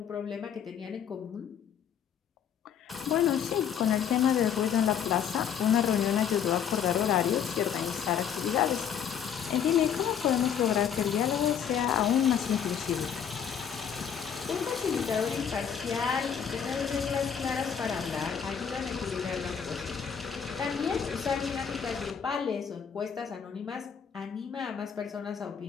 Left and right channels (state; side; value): quieter; right; 8.0 dB